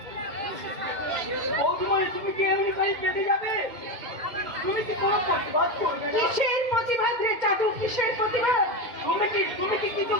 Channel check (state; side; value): late; left; 2.5 ms